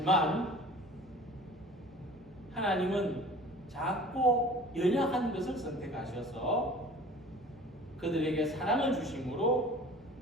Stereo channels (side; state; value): both; normal; correlation 0.45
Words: 하나님은 작고 연약한 것을 선택하셔서 그들에게 사랑을 주심으로